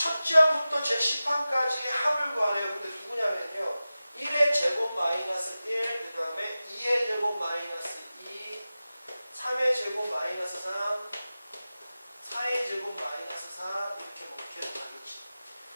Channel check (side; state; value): both; inverted; correlation -0.95